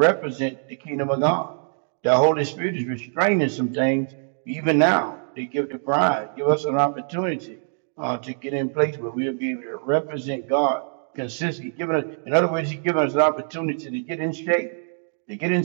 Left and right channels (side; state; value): left; silent; digital silence